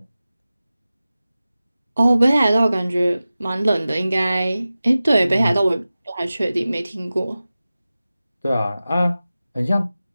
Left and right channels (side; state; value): both; inverted; correlation -0.96